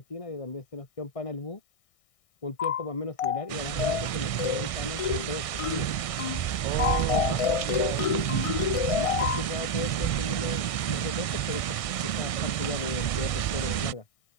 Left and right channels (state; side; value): late; right; 1.6 ms